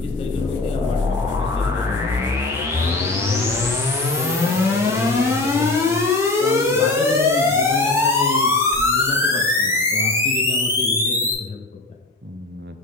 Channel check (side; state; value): right; quieter; 3.1 dB